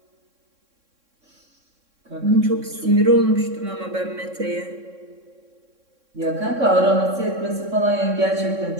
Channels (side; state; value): left; late; 3.6 ms